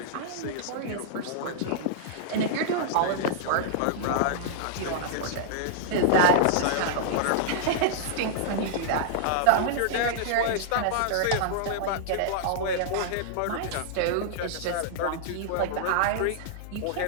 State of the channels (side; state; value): both; different; correlation -0.01